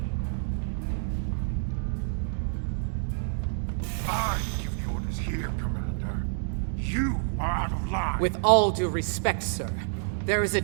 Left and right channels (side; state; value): left; silent; digital silence